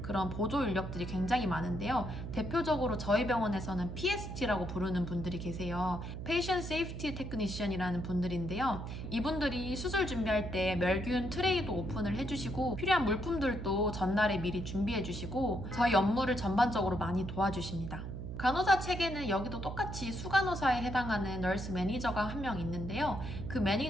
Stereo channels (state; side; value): noise; right; hum, 7 dB below the sound